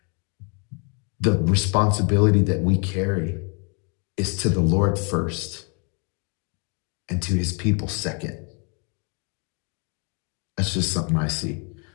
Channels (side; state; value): right; quieter; 36.1 dB